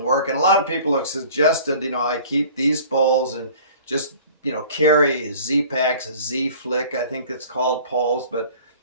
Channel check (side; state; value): both; inverted; correlation -0.47